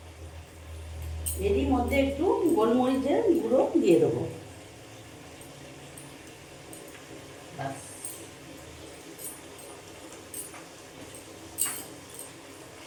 এরই মধ্যে একটু গোলমরিচের গুঁড়ো দিয়ে দেবো।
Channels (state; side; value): identical; both; correlation 1.00